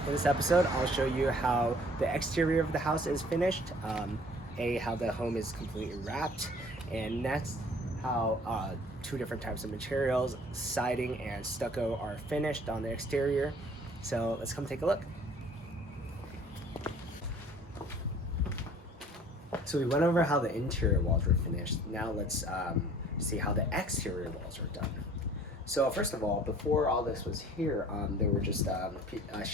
In this episode, I'll show you how the exterior of the house is finished, how the home is completely wrapped, and next, how two different types of materials, siding and stucco, are finished on the exterior. So let's come take a look. So we went over how the interior walls were finished. Now let's see how the exterior walls are done. So first of all, before all this was here, there were just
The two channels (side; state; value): both; normal; correlation 0.53